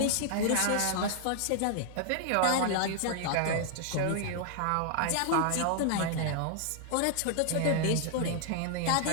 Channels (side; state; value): both; different; correlation 0.00